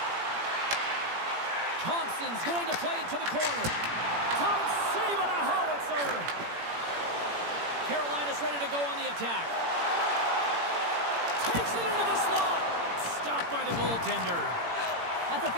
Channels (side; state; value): left; late; 17 ms